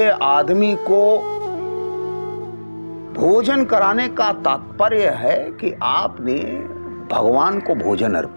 आदमी को भोजन कराने का तात्पर्य है कि आपने भगवान को भोजन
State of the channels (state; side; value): inverted; both; correlation -1.00